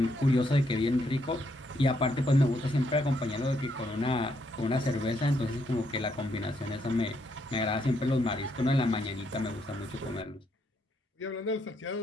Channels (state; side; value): normal; both; correlation 0.75